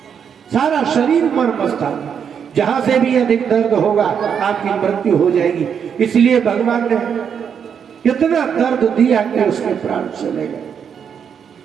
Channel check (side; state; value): left; quieter; 7.5 dB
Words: सारा शरीर मर्म स्थान, जहां से भी अधिक दर्द होगा आपकी मृत्यु हो जाएगी। इसलिए भगवान ने इतना दर्द दिया कि उसके प्राण चले गए।